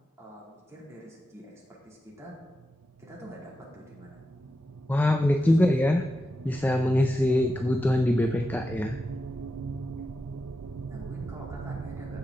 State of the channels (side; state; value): both; normal; correlation 0.89